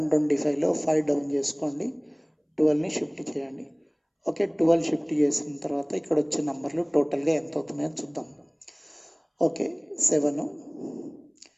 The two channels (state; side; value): identical; both; correlation 1.00